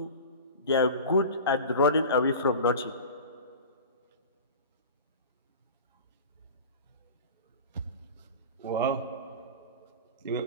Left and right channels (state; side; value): inverted; both; correlation -0.34